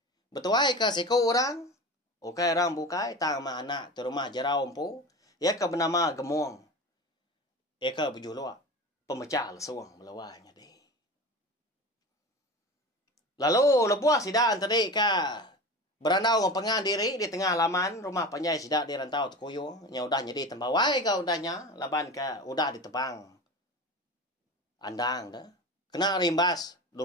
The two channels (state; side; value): normal; both; correlation 0.31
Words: Betuai ke siku orang. Ukai orang bukai tang ma anak tu rumah jarau empu. Ya ke bernama Gemong. Ya ke berjuluk pemecah lesuang melawai jadi. Lalu lebuah sidak tadi ke berandau ngepengan diri di tengah laman rumah panjai sidak di rantau Tekuyung. Nya udah jadi tembawai ke udahnya laban ke udah ditebang. Andang dah. Kena rimbas,